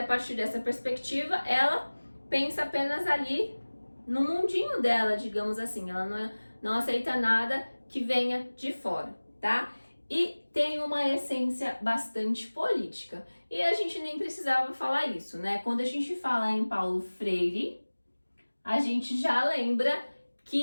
a partir dessa perspectiva, ela pensa apenas ali no mundinho dela, digamos assim. Ela não aceita nada que venha de fora, tá? E tem uma essência bastante política. E a gente nem precisava falar isso, né? Quando a gente fala em Paulo Freire, a gente já lembra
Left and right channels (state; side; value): inverted; both; correlation -1.00